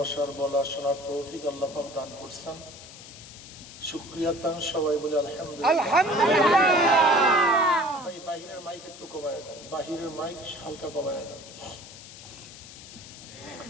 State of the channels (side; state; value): left; noise; hiss, 16 dB below the sound